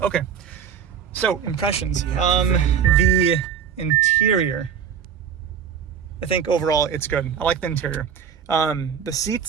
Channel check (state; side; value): quieter; left; 7.4 dB